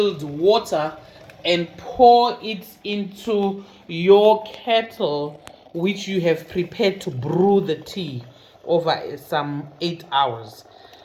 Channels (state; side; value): identical; both; correlation 1.00